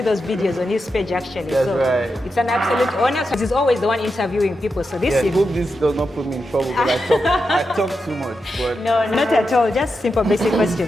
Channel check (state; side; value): normal; both; correlation 0.88